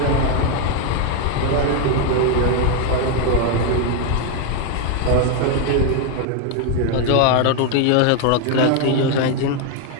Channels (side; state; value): both; different; correlation 0.01